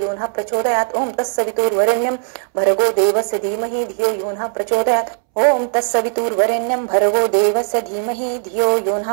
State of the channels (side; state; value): left; silent; 67 dB below the other